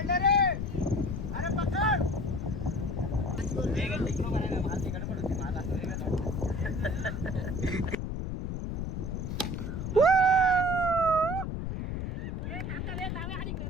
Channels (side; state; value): left; noise; rumble, 3 dB below the sound